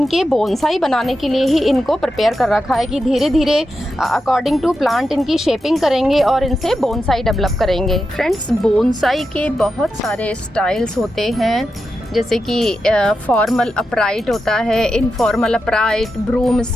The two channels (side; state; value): both; normal; correlation 0.89